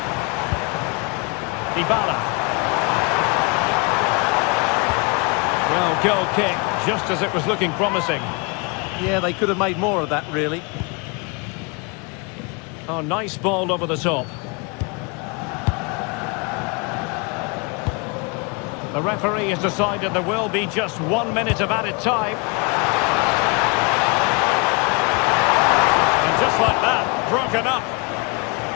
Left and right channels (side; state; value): right; quieter; 31.2 dB